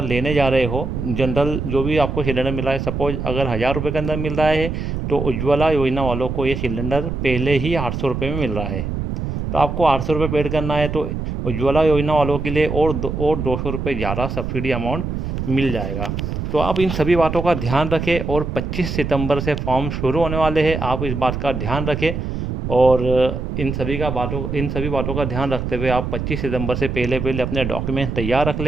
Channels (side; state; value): right; noise; rumble, 4 dB below the sound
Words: लेने जा रहे हो, जनरल जो भी आपको सिलेंडर मिल रहा है, सपोज अगर 1000 रुपये के अंदर मिल रहा है, तो उज्ज्वला योजना वालों को ये सिलेंडर पहले ही 800 रुपये में मिल रहा है। तो आपको 800 रुपये पेड करना है, तो उज्ज्वला योजना वालों के लिए और 200 रुपये ज़्यादा सब्सिडी अमाउंट मिल जाएगा। तो आप इन सभी बातों का ध्यान रखें, और 25 सितंबर से फॉर्म शुरू होने वाले हैं, आप इस बात का ध्यान रखें। और इन सभी बातों का ध्यान रखते हुए आप 25 सितंबर से पहले अपने डॉक्यूमेंट तैयार रख